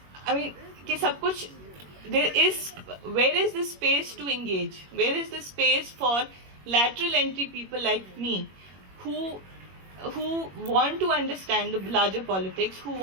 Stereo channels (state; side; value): late; left; 21 ms